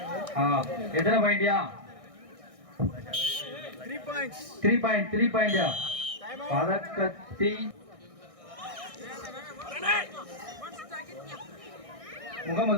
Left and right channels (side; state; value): left; late; 1.6 ms